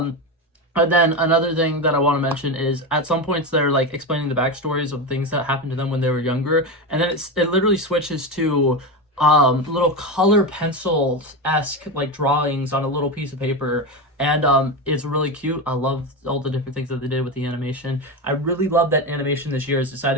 then another thing that I want to mention is at some points they're like explaining the backstories of things that happened to them when they were younger. And then it literally switches to little color pencil-esque like drawings on a little piece of paper, and it's really cute. I love all the different things that they did with the animation. I really love that animation this year has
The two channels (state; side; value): normal; both; correlation 0.17